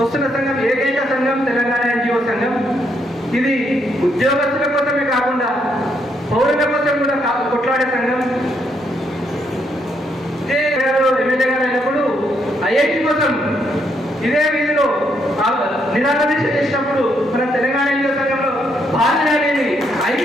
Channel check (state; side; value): normal; both; correlation 0.75